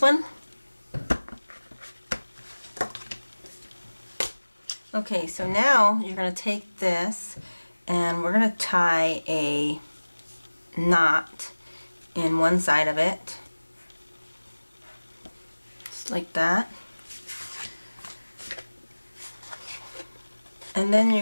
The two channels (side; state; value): both; inverted; correlation -1.00